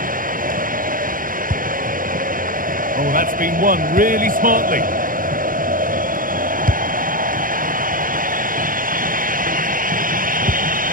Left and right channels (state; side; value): late; left; 0.40 ms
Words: Oh, that's been won really smartly.